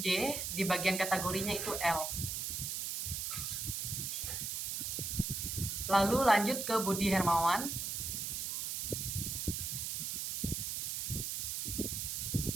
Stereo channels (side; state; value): right; noise; hiss, 2 dB below the sound